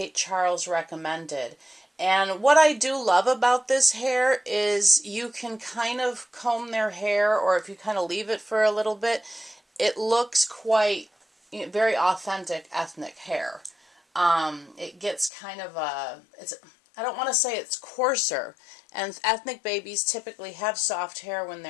Charles recommended. And what I do love about this hair is you can kind of comb their hair, or if you kind of leave it for a little bit, it looks quite, very authentic ethnic hair. It gets kind of I don't want to say it's coarser, and ethnic babies typically have soft hair when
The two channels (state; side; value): drops out; right; at 15.3 s